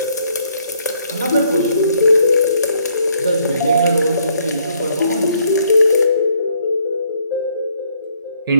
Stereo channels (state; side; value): inverted; both; correlation -0.69